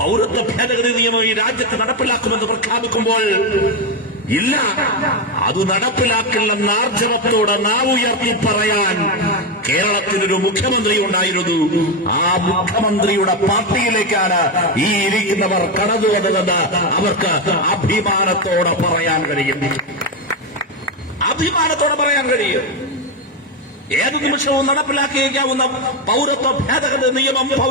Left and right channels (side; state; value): both; normal; correlation 0.09